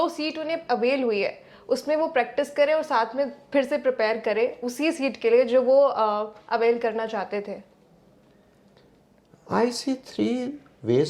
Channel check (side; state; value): both; identical; correlation 1.00